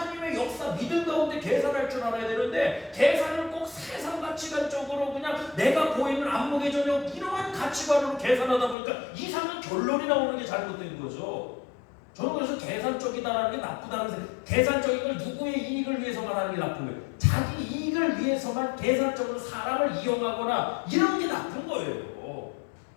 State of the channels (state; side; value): drops out; right; at 8.8 s